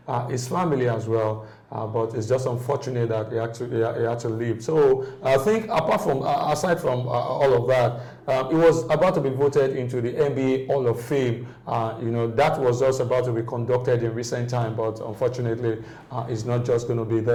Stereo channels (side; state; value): both; identical; correlation 1.00